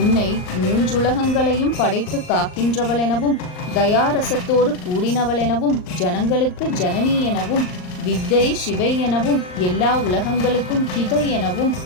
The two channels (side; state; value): right; late; 39 ms